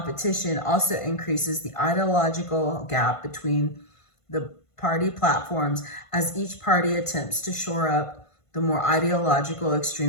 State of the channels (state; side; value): late; right; 1.5 ms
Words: also increases the ideological gap between the party platforms as each party attempts to shore up the more ideological